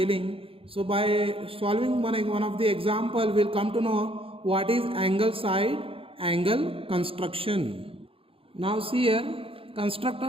So by solving one of the example, we'll come to know what is angle side angle construction. Now see here, construct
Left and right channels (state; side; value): late; left; 0.27 ms